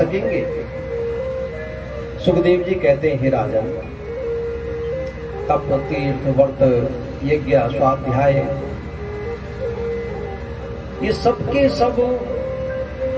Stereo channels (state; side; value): identical; both; correlation 1.00